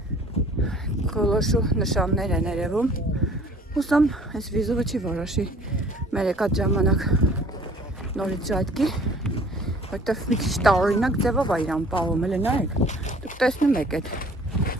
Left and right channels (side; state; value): both; normal; correlation 0.52